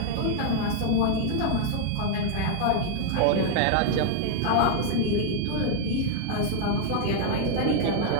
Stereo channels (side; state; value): both; different; correlation 0.00